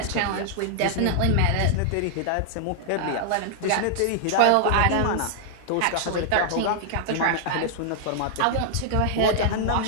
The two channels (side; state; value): both; different; correlation -0.01